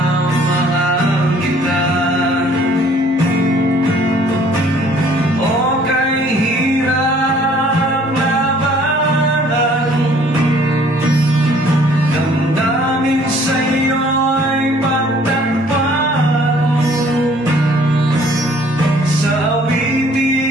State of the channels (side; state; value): both; normal; correlation 0.58